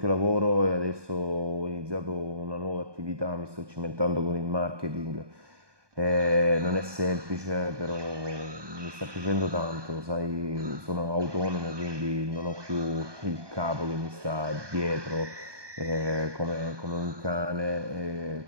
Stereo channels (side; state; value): left; late; 1.2 ms